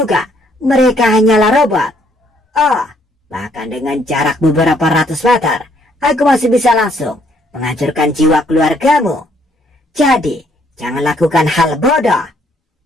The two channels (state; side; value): normal; both; correlation 0.67